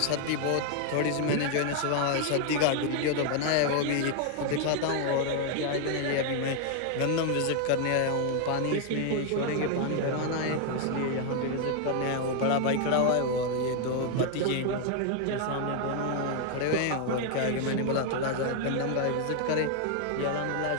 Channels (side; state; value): both; different; correlation 0.00